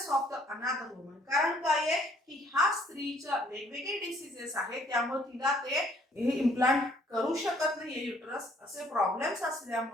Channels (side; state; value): both; normal; correlation 0.62